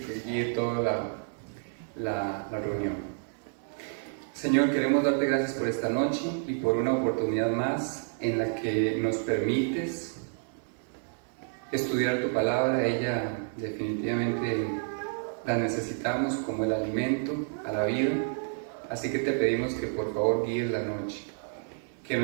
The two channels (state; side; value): silent; left; digital silence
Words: guíe toda la reunión. Señor, queremos darte gracias por esta noche y por una oportunidad más en la que nos permites estudiar tu palabra. Ella definitivamente la necesitamos como el alimento a la vida, así que te pedimos que por favor guíes la noche, que